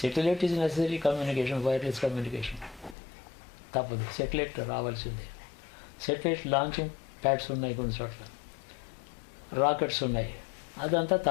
Satellite is necessary communication, wireless communication తప్పదు, సెటిలైట్ రావాల్సిందే. సెటిలైట్ లాంచింగ్ ప్యాడ్స్ ఉన్నాయి, కొన్ని చోట్ల రాకెట్స్ ఉన్నాయి, అదంతా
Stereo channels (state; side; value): drops out; right; at 3.0 s